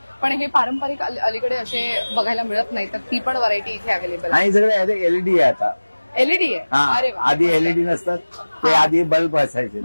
पण हे पारंपरिक अलीकडे असे बघायला मिळत नाही, तर ती पण व्हरायटी इथे अवेलेबल आहे. आणि सगळे एलईडी आहे आता. एलईडी आहे. अरे वा. आधी एलईडी नसतात, ते आधी बल्ब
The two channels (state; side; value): inverted; both; correlation -1.00